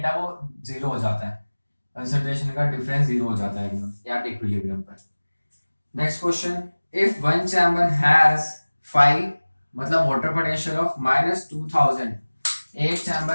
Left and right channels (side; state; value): both; inverted; correlation -1.00